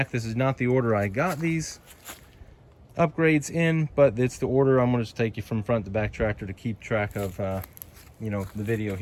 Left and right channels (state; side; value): identical; both; correlation 1.00